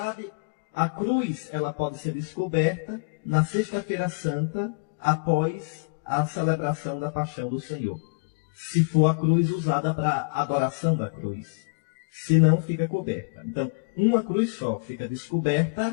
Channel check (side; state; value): right; quieter; 34.5 dB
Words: a cruz ela pode ser descoberta na Sexta-feira Santa, após a celebração da Paixão do Senhor. Se for a cruz usada para adoração da cruz. Se não, fica coberta. Então, uma cruz só fica